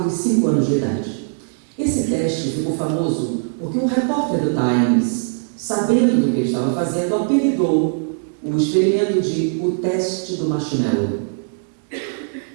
e 5 anos de idade. Esse teste ficou famoso porque um repórter do Times, sabendo do que ele estava fazendo, apelidou o experimento de o teste do marshmallow.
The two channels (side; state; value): left; silent; digital silence